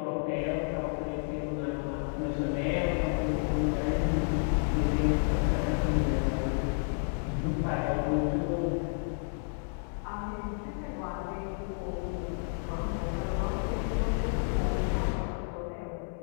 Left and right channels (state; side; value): silent; right; 57 dB below the other